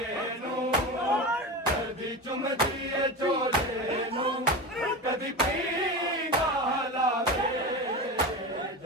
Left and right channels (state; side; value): normal; both; correlation 0.25